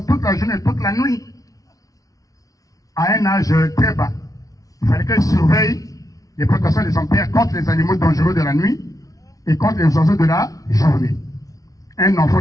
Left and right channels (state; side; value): late; right; 0.17 ms